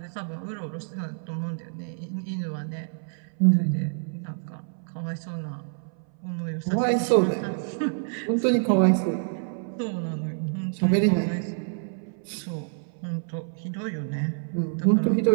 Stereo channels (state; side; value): silent; left; 60 dB below the other